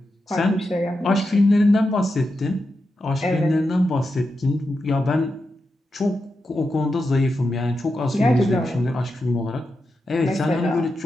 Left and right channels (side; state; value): both; normal; correlation 0.88